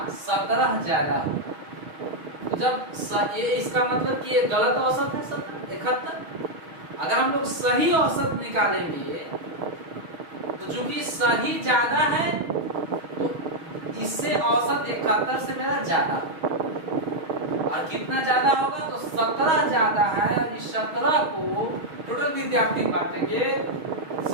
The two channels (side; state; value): left; late; 6.3 ms